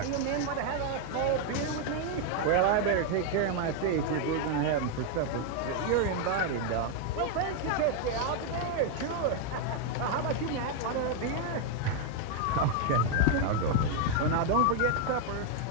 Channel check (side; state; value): both; different; correlation 0.01